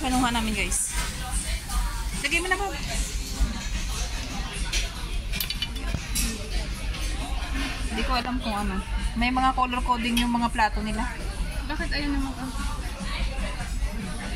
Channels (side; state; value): both; identical; correlation 1.00